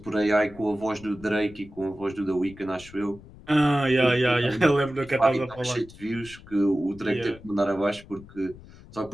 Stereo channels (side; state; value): left; noise; rumble, 20 dB below the sound